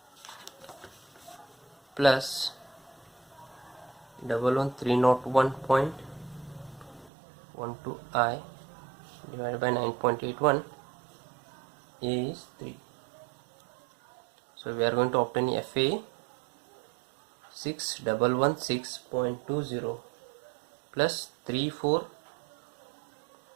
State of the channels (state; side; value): drops out; left; at 7.1 s